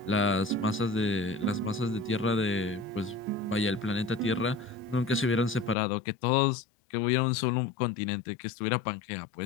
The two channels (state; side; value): drops out; right; at 5.8 s